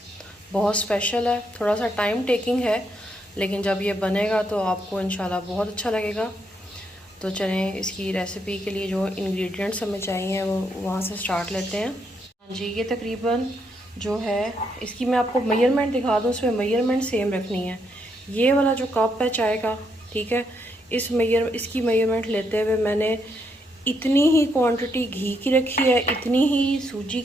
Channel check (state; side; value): normal; both; correlation 0.77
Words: बहुत स्पेशल है। थोड़ा सा टाइम टेकिंग है, लेकिन जब ये बनेगा तो आपको इंशाल्लाह बहुत अच्छा लगेगा। तो चलें इसकी रेसिपी के लिए जो इंग्रेडिएंट्स हमें चाहिए वो वहाँ से स्टार्ट लेते हैं। हाँ जी, ये तकरीबन जो है इसकी मैं आपको मेजरमेंट दिखा दूँ, उसमें मेजरमेंट सेम रखनी है। ये वाला जो कप है चाय का, ठीक है, इसकी मेजरमेंट लेते हुए मैंने इतनी ही क्वांटिटी घी की रखी है, इतनी ही सूजी